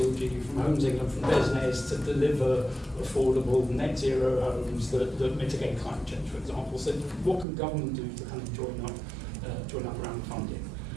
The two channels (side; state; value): left; drops out; at 7.5 s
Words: from Homes England, from Desnes to deliver affordable net zero homes that mitigate climate change, for example. So what can government do to kind of join up around funding?